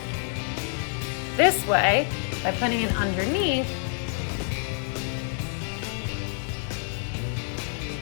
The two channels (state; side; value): silent; right; 60 dB below the other